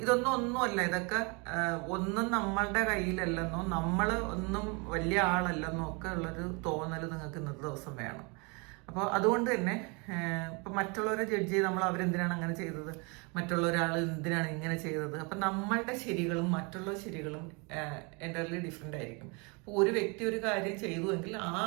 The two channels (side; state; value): left; quieter; 30.8 dB